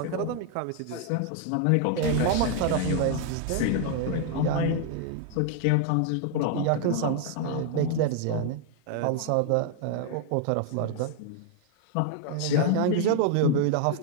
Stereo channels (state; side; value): different; both; correlation 0.00